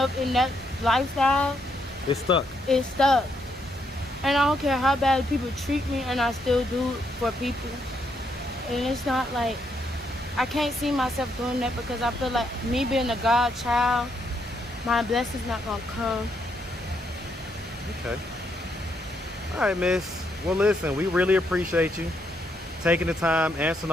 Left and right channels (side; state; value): both; normal; correlation 0.76